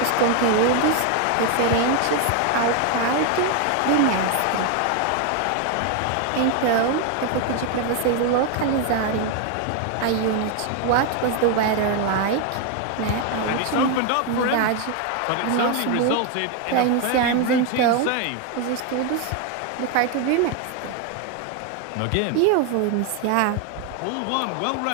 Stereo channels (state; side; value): different; both; correlation 0.01